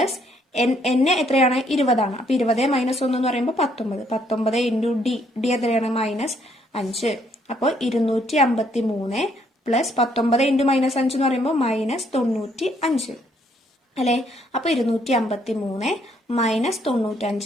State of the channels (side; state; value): both; normal; correlation 0.69